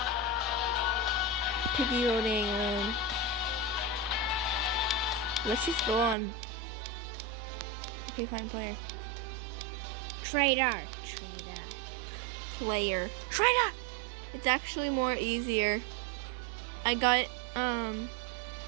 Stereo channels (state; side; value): drops out; left; at 6.2 s